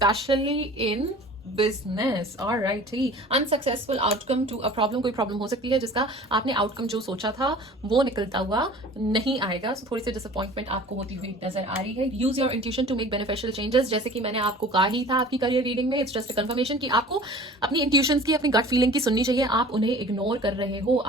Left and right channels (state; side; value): normal; both; correlation 0.44